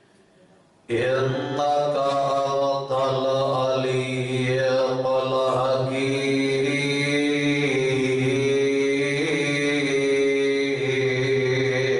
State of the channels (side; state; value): both; identical; correlation 1.00